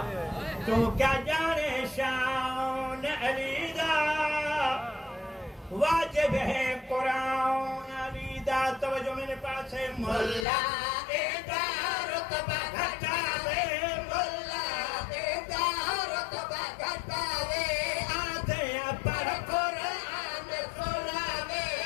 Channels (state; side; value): drops out; right; at 10.5 s